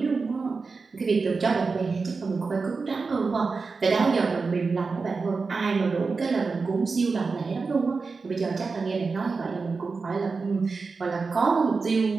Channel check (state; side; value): quieter; left; 4.4 dB